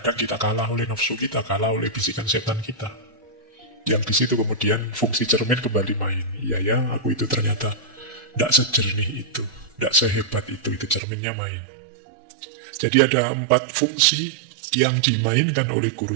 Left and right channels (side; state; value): left; drops out; at 11.0 s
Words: kita kalah oleh nafsu kita, kalah oleh bisikan setan kita. Yang di situ kemudian fungsi cermin kembali main. Iya ya, aku itu ternyata tidak sejernih itu, tidak sehebat itu cerminnya main. Jadi ada 4 fungsi yang dimainkan oleh